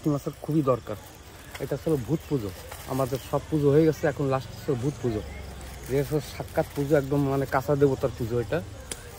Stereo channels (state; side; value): identical; both; correlation 1.00